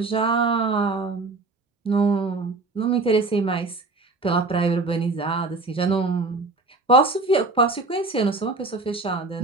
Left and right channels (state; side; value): quieter; left; 3.5 dB